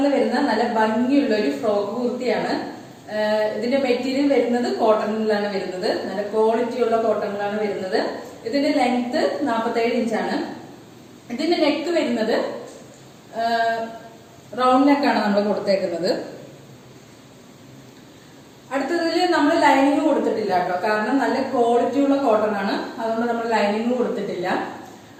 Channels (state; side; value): identical; both; correlation 1.00